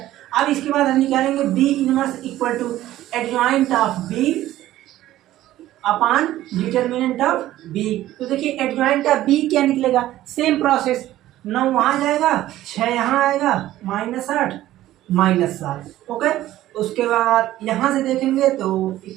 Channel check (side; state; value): left; quieter; 14.4 dB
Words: अब इसके बाद हम निकालेंगे B inverse equal to adjoint of B upon determinant of B. तो देखिए एडजॉइंट ऑफ बी क्या निकलेगा, सेम प्रोसेस, 9 वहाँ जाएगा, 6 यहाँ आएगा, -8 -7। ओके, उसके बाद यहाँ से देखेंगे तो